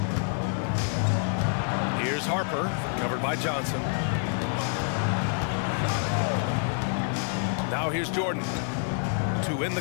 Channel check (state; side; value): silent; right; 60 dB below the other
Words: Here's Harper, covered by Johnson. Now here's Jordan to win